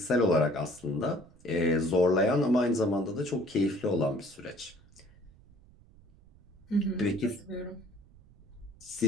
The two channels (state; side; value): noise; right; rumble, 26 dB below the sound